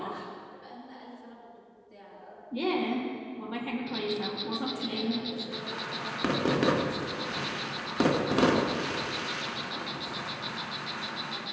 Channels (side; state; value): both; identical; correlation 1.00